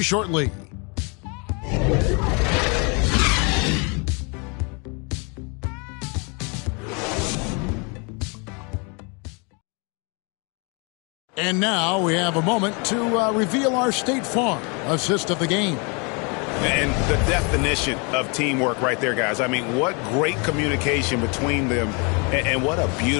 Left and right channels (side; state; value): right; quieter; 32.5 dB